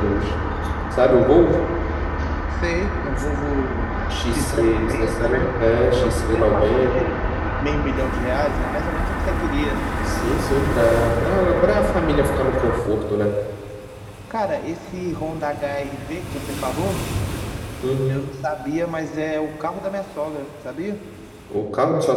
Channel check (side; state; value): both; identical; correlation 1.00